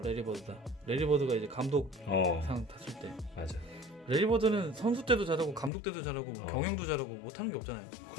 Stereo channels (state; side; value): drops out; right; at 5.7 s